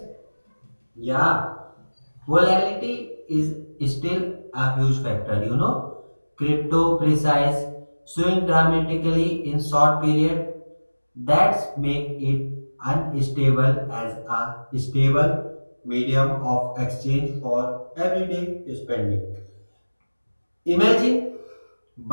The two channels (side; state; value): both; inverted; correlation -1.00